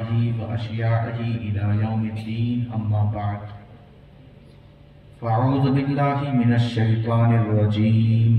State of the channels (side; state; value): both; identical; correlation 1.00